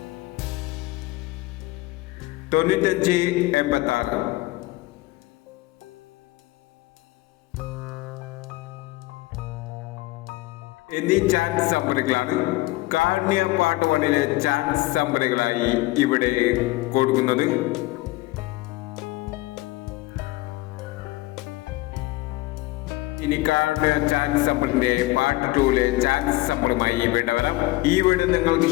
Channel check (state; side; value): quieter; right; 19.7 dB